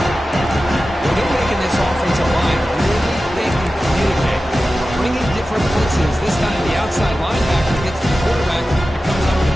This time the outside linebacker gets the quarterback and comes up with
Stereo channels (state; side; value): normal; both; correlation 0.94